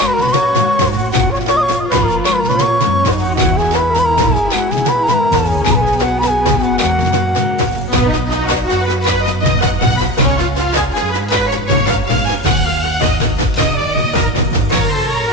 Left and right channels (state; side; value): normal; both; correlation 0.39